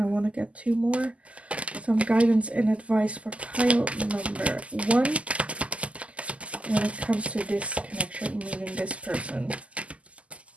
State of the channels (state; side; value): late; left; 0.063 ms